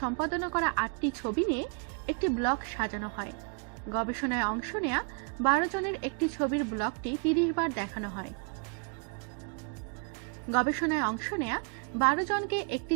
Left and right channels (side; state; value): left; quieter; 36.9 dB